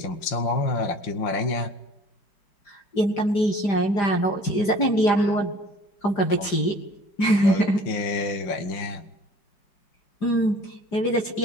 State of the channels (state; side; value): late; right; 5.0 ms